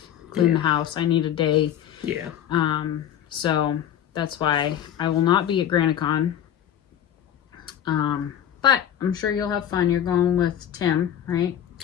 clean the house. I need a day. Yeah. So that's why I will not be at Granite Con. But I'm sure you'll have fun. You're going with Tim, right?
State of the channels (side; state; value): right; quieter; 10.4 dB